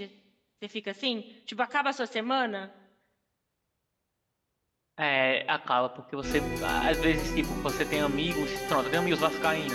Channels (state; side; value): identical; both; correlation 1.00